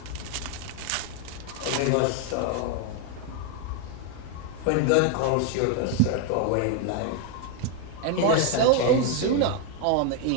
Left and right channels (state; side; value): different; both; correlation 0.01